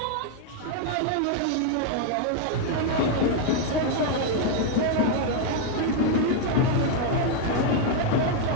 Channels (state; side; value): different; both; correlation 0.01